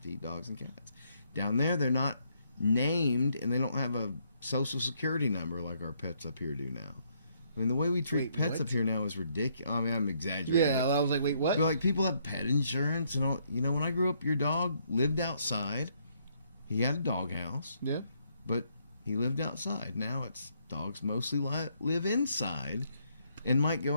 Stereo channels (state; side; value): inverted; both; correlation -0.72